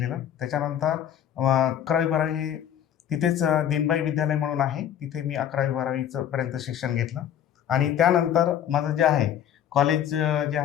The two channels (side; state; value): right; quieter; 10.0 dB